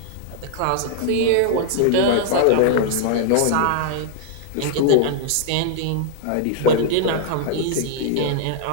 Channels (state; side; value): different; both; correlation -0.01